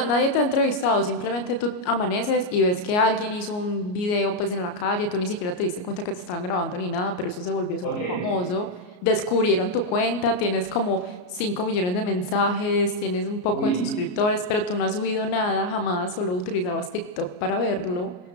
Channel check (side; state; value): right; late; 33 ms